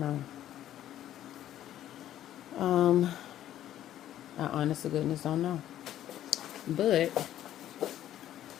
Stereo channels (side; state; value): right; quieter; 12.1 dB